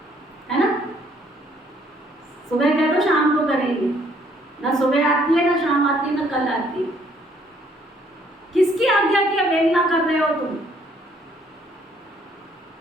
है ना? सुबह कह दो शाम को करेंगे, ना सुबह आती है ना शाम आती है ना कल आती है। किसकी आज्ञा की अवहेलना कर रहे हो तुम?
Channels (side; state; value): both; normal; correlation 0.65